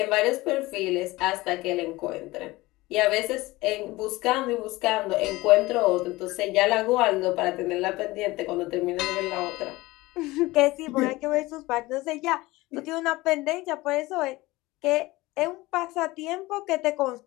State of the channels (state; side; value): quieter; right; 20.1 dB